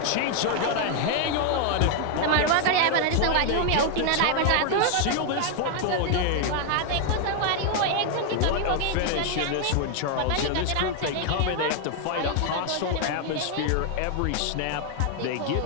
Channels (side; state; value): both; different; correlation 0.00